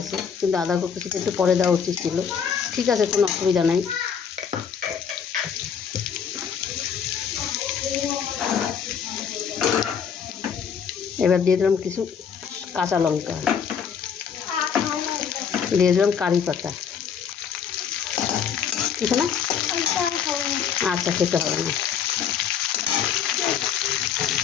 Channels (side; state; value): right; quieter; 7.4 dB